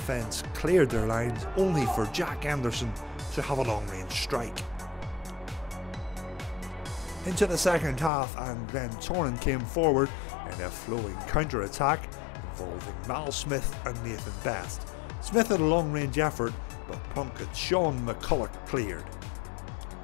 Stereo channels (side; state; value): right; drops out; at 8.1 s